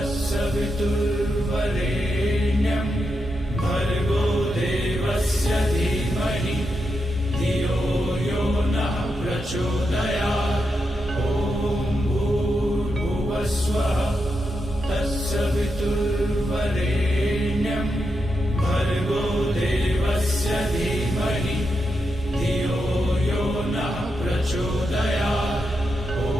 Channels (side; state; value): both; normal; correlation 0.85